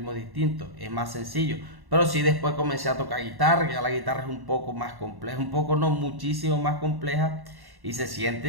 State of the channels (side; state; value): left; late; 1.1 ms